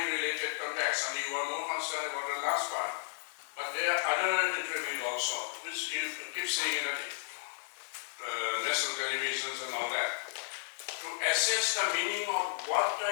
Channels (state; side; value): silent; right; 55 dB below the other